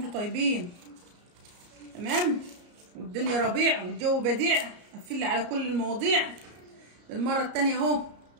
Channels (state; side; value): late; left; 34 ms